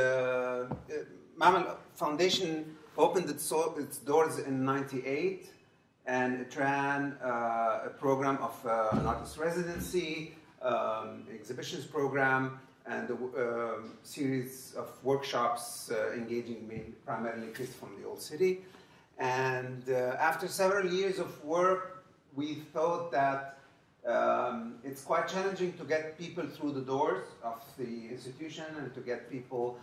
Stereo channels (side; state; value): both; identical; correlation 1.00